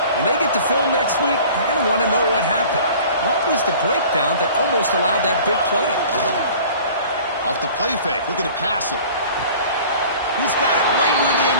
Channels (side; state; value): both; inverted; correlation -0.46